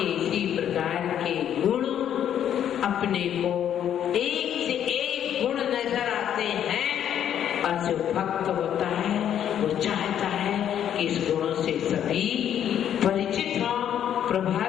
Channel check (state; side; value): quieter; right; 9.9 dB